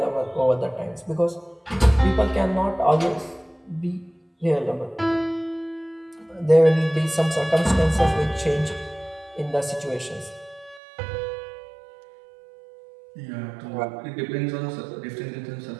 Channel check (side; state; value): left; drops out; at 10.8 s